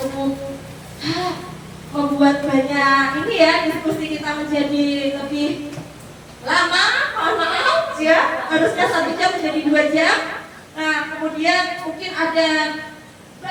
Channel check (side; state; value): both; identical; correlation 1.00